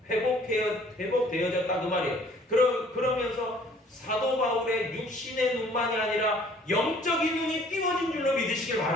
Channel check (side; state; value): both; normal; correlation 0.56